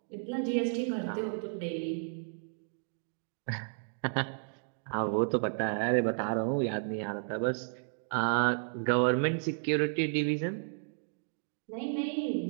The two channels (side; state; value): left; silent; digital silence